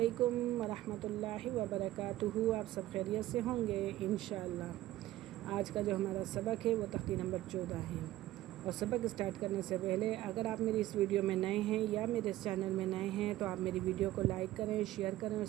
वरहमतुल्लाहि वबरकातुहू। आप सब खैरियत से होंगे इंशाअल्लाह। आज का जो हमारा सबक है वो तख्ती नंबर 14 है। और सबक स्टार्ट करने से पहले अगर आप मेरी इस वीडियो में नए हैं या मेरे इस चैनल में नए हैं तो आप मेरी वीडियो को लाइक करें, शेयर करें और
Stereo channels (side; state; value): left; quieter; 15.3 dB